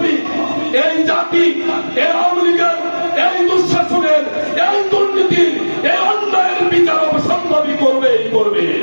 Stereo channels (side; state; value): both; inverted; correlation -1.00